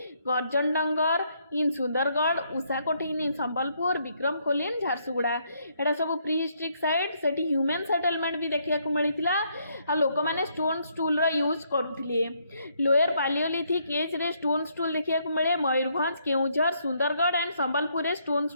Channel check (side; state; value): both; inverted; correlation -0.72